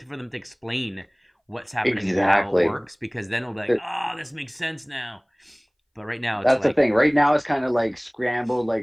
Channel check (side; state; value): both; identical; correlation 1.00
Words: for them to explain what's happening and how it works, because then it'll be like, oh, this makes sense now. But right now, it's That's like, the thing. Right now, it's kind of like scrambled.